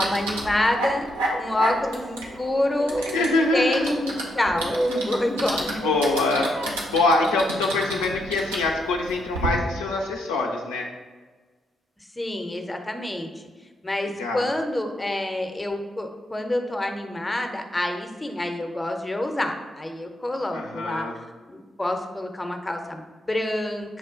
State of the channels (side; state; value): both; normal; correlation 0.78